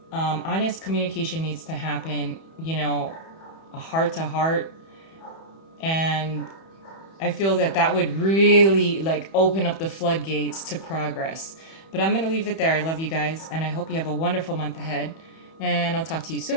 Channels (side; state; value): right; late; 31 ms